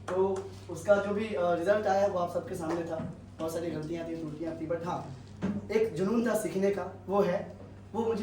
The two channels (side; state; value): both; identical; correlation 1.00